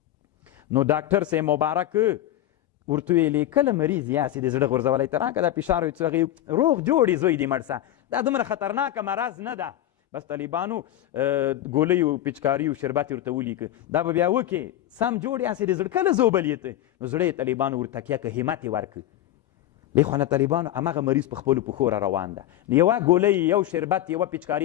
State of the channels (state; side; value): quieter; right; 13.1 dB